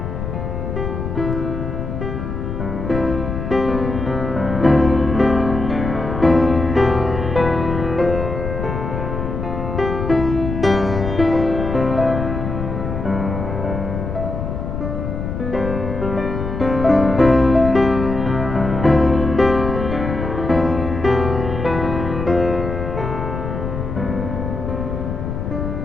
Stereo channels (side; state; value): left; noise; rumble, 4 dB below the sound